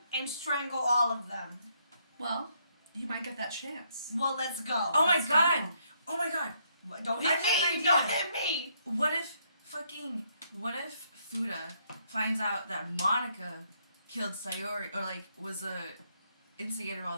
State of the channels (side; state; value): both; inverted; correlation -0.73